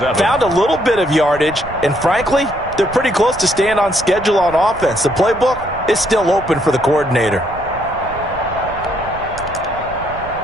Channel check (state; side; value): noise; right; rumble, 15 dB below the sound